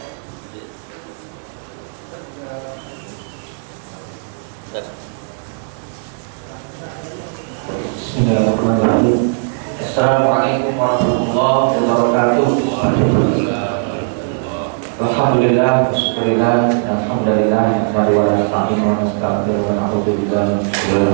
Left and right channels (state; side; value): silent; left; 68 dB below the other